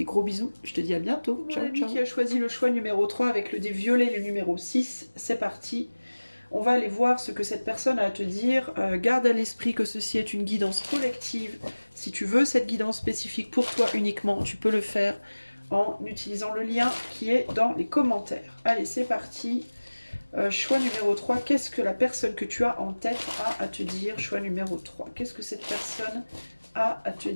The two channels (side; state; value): both; inverted; correlation -1.00